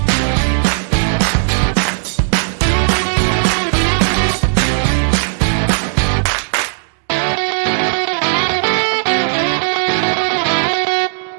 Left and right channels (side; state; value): left; silent; 69 dB below the other